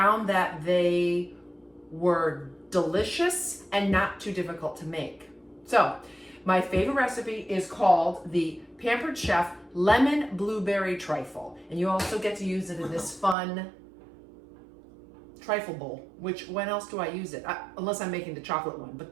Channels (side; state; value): left; drops out; at 13.4 s